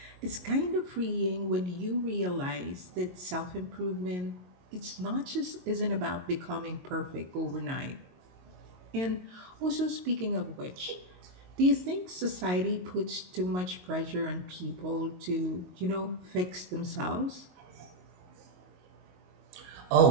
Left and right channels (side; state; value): left; late; 22 ms